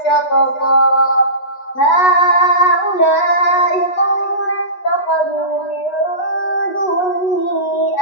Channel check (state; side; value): late; right; 8.2 ms